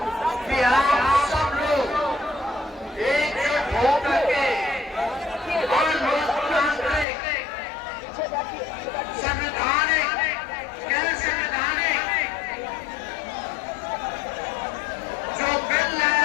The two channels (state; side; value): drops out; right; at 7.1 s